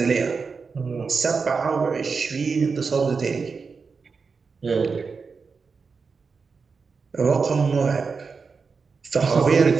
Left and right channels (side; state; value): left; quieter; 5.0 dB